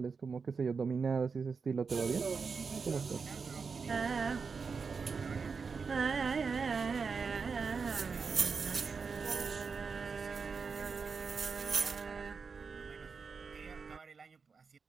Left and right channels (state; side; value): quieter; left; 5.2 dB